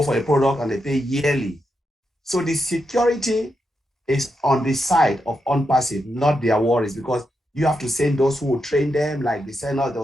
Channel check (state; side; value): normal; both; correlation 0.85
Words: for a product and they pay yearly. So the security is on the side of OnPassive, not their worries, because you have to send those who will train them, like they send us,